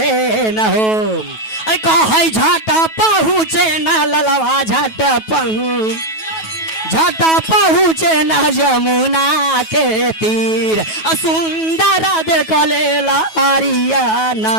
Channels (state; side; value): late; right; 9.2 ms